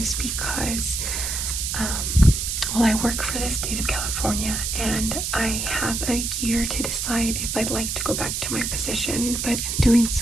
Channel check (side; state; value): right; noise; hiss, 2 dB below the sound